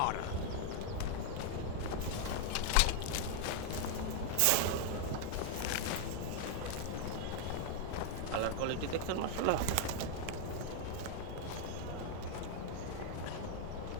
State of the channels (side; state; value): both; different; correlation 0.00